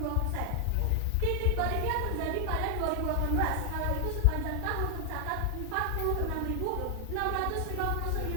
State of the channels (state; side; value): different; both; correlation 0.00